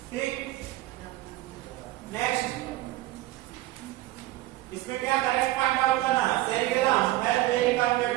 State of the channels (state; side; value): quieter; left; 17.3 dB